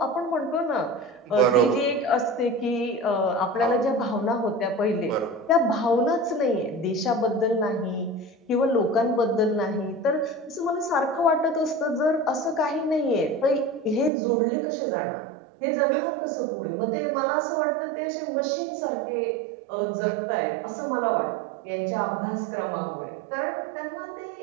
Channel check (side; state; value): left; drops out; at 14.1 s